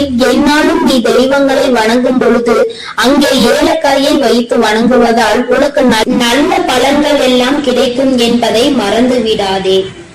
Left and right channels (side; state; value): both; identical; correlation 1.00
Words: என்னாலும் நீ தெய்வங்களை வணங்கும் பொழுது அங்கே ஏலக்காயை வைத்து வணங்குவதால் உனக்கு நல்ல பலன்கள் எல்லாம் கிடைக்கும் என்பதை மறந்து விடாதே.